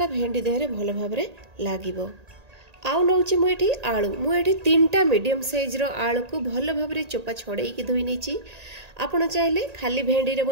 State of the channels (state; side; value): late; left; 1.8 ms